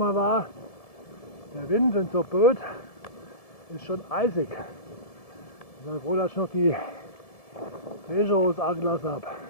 wahr. Der Wind, wenn es so böet, ist schon eisig. Ich bin froh, dass ich noch die Fächerhose angelassen habe.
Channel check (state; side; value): late; right; 1.7 ms